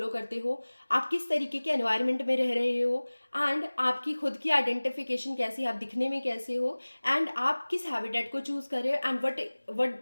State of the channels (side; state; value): both; inverted; correlation -1.00